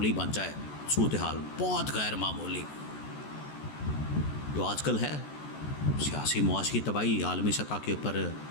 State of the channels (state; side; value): late; right; 14 ms